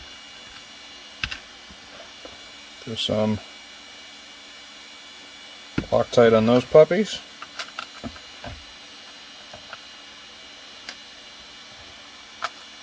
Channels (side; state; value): both; identical; correlation 1.00